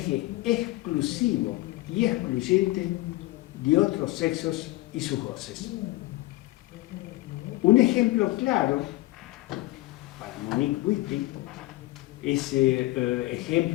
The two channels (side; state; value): right; quieter; 19.2 dB